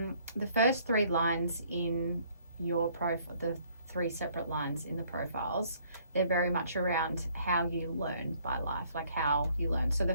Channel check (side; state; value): both; inverted; correlation -0.62